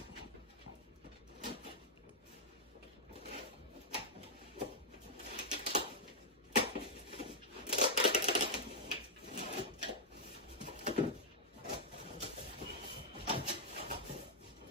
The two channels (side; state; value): both; normal; correlation -0.06